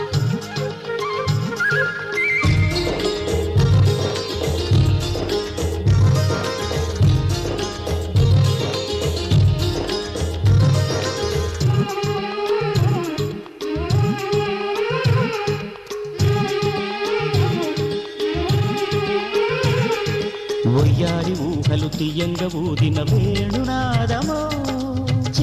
ఒయ్యారి ఊహలు తీయంగా ఊదిన వేణునాదమో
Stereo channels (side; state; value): both; identical; correlation 1.00